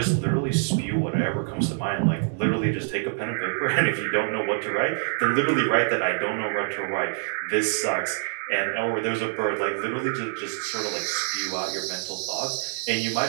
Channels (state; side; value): silent; left; digital silence